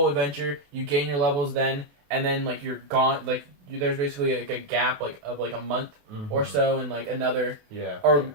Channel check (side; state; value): left; late; 28 ms